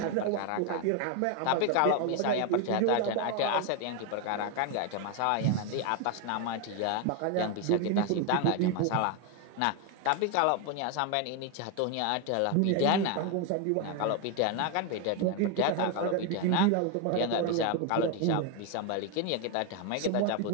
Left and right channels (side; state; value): both; different; correlation 0.01